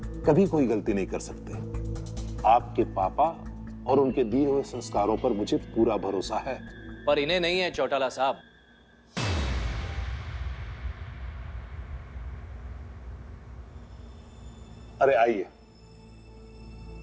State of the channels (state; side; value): identical; both; correlation 1.00